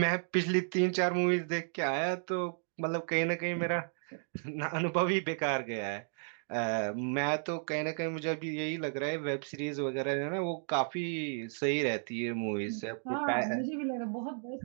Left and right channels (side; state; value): left; silent; 56 dB below the other